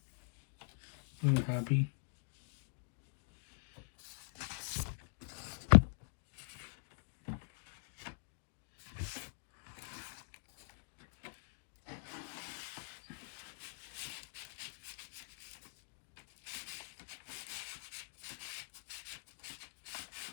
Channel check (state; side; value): silent; right; digital silence